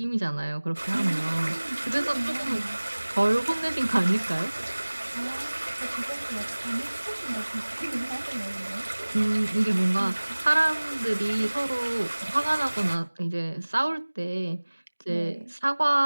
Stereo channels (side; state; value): both; inverted; correlation -1.00